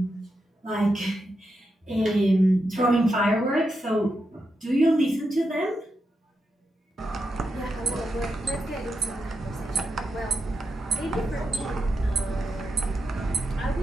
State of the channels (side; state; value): both; normal; correlation 0.85